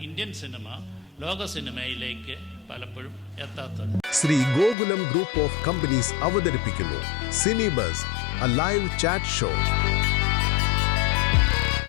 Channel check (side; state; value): right; drops out; at 4.8 s